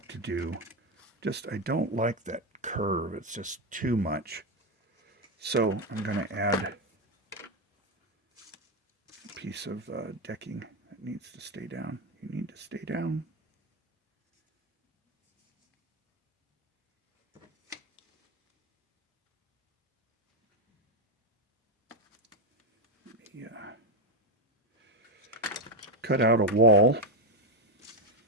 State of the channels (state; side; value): normal; both; correlation 0.07